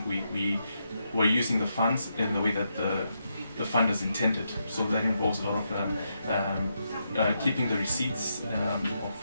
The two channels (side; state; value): both; inverted; correlation -0.82